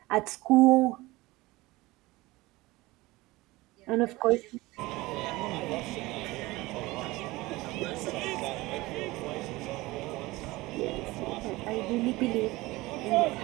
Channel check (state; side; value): quieter; left; 20.5 dB